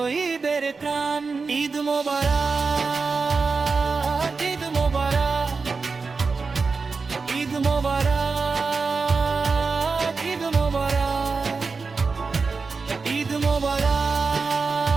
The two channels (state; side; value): quieter; left; 4.6 dB